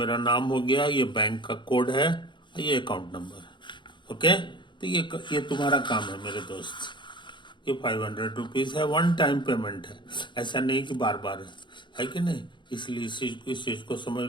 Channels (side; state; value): right; late; 0.23 ms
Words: नाम हो गया, ये बैंक का कोड है, ये अकाउंट नंबर है। ओके, तो ये तुम्हारा काम है मेरे दोस्त। ये 500 रुपीज है, वन टाइम पेमेंट है, ऐसा नहीं कि बार बार है कि नहीं। इसलिए इस चीज को